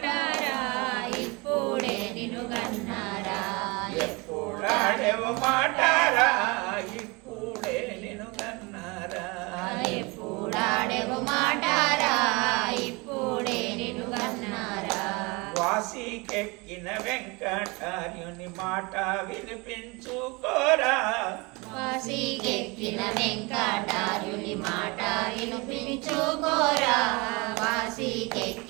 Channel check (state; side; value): quieter; left; 26.8 dB